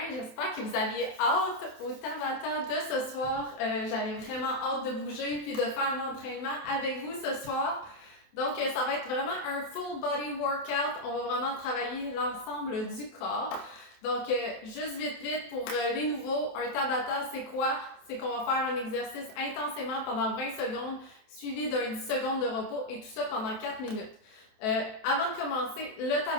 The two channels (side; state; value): right; late; 27 ms